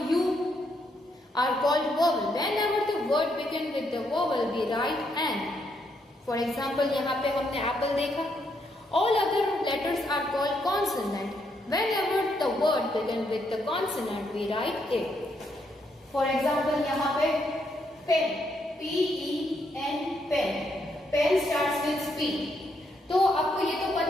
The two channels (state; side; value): normal; both; correlation 0.76